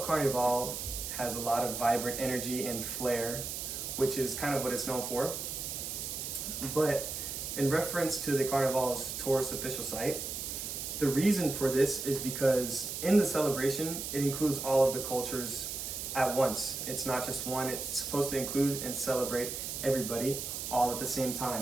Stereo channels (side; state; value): right; noise; hiss, 5 dB below the sound